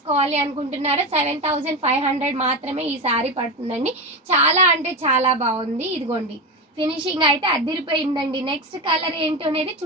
అనుకుంటున్నారో 7,500 మాత్రమే ఈ శారీ పడుతుందండి. చాలా అంటే చాలా బాగుంది. ఇదిగోండి ఫినిషింగ్ అయితే అదిరిపోయిందండి. నెక్స్ట్ కలర్ ఏంటో అనేది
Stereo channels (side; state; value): both; normal; correlation 0.18